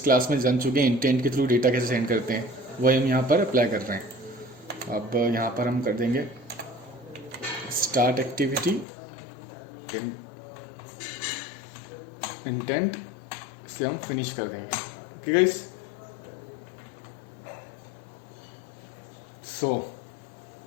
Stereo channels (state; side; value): drops out; right; at 8.8 s